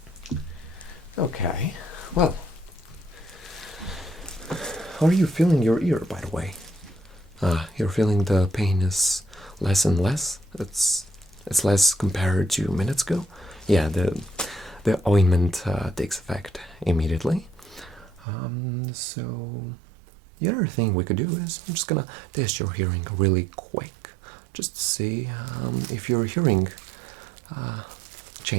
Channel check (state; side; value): drops out; left; at 18.2 s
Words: Okay, well, how are you feeling your ear, by the way? You're feeling the pain is less and less? It's less compared to minutes ago? Yeah, the ointment takes effect immediately. So the other thing we could do is I'm just gonna test your hearing really quick, just to see if your hearing